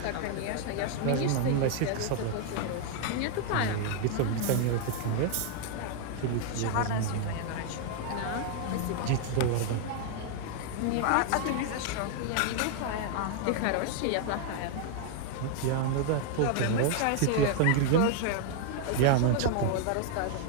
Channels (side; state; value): both; different; correlation 0.00